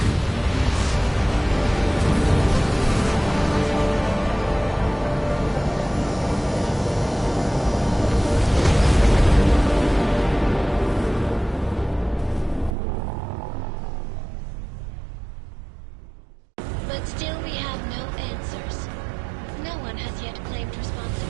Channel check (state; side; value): drops out; left; at 12.8 s